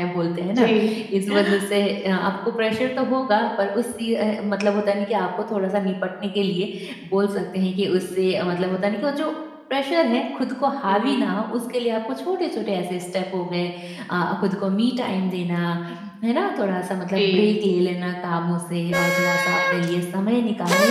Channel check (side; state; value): both; identical; correlation 1.00